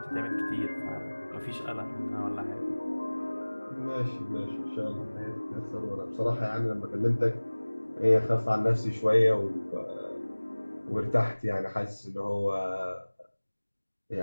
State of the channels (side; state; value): both; inverted; correlation -1.00